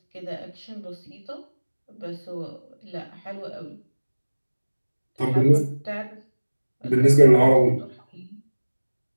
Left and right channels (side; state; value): both; inverted; correlation -1.00